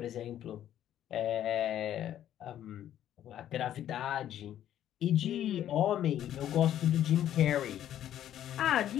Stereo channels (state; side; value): quieter; right; 11.4 dB